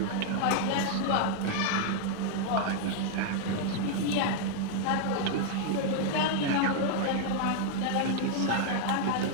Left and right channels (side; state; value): both; different; correlation 0.00